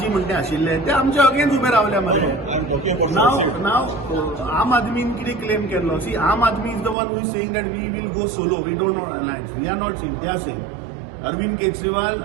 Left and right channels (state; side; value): drops out; left; at 7.0 s